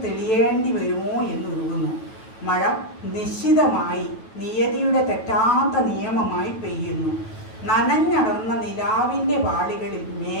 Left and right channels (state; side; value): late; right; 9.1 ms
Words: തെളിയേണ്ടി വരുമോ എന്നുരുകുന്നു. മഴ നിശ്ചിതമായി നിയതിയുടെ തെറ്റാത്ത നിയമമായി പെയ്യുന്നു. നനഞ്ഞടർന്ന നിലാവിൻ്റെ വാളികളിൽ